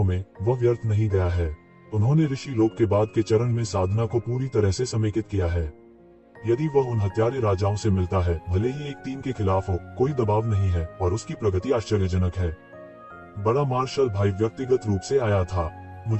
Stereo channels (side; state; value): both; identical; correlation 1.00